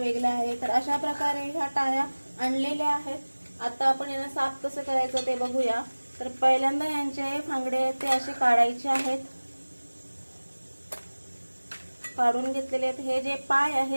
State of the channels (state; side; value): inverted; both; correlation -1.00